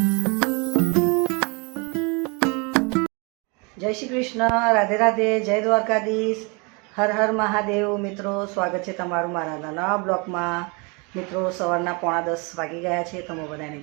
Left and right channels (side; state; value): left; quieter; 30.6 dB